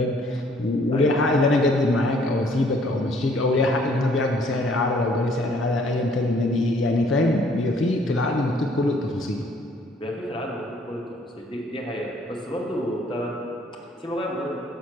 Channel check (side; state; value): both; normal; correlation 0.61